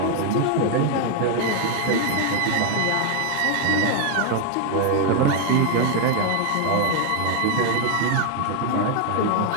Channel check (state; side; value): different; both; correlation 0.01